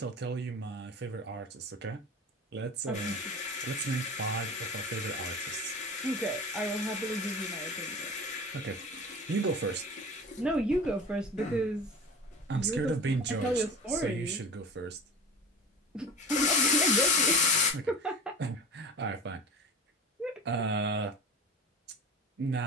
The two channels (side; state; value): both; normal; correlation 0.35